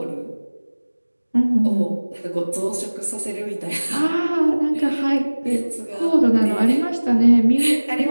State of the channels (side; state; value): both; inverted; correlation -1.00